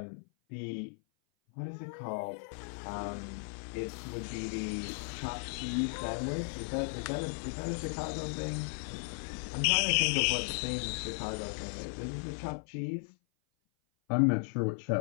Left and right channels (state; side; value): silent; right; 54 dB below the other